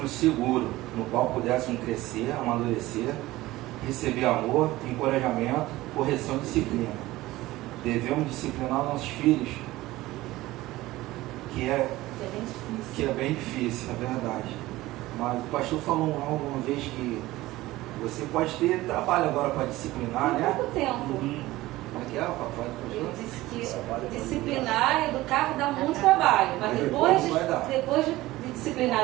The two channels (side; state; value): left; quieter; 17.7 dB